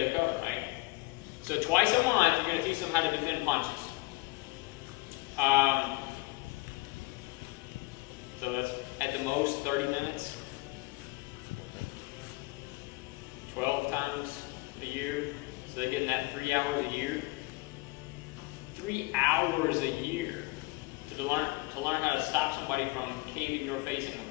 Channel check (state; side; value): quieter; right; 23.4 dB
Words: to cover, right? So twice a month, you're going to teach them how to defend punches. So that's at the most 30 minutes. 12 times a year. So they're getting that 3 hours a year. 3 hours a year to learn how to stop somebody from caving your face in